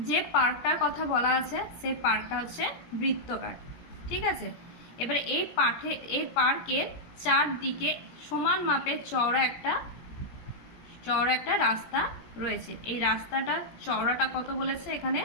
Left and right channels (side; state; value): right; late; 18 ms